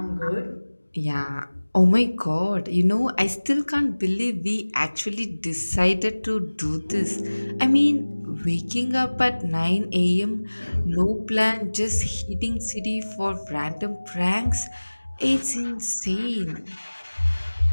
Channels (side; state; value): both; inverted; correlation -1.00